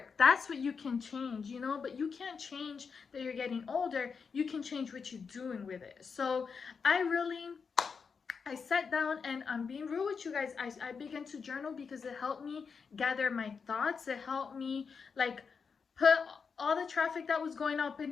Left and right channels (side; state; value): right; quieter; 5.6 dB